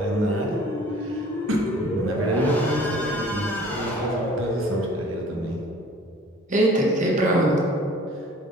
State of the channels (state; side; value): normal; both; correlation 0.50